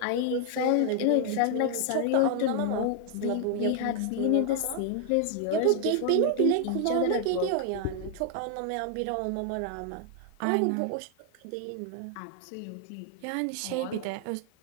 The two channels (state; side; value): different; both; correlation 0.00